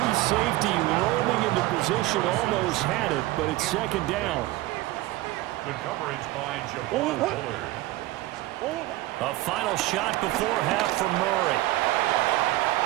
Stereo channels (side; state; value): left; quieter; 17.7 dB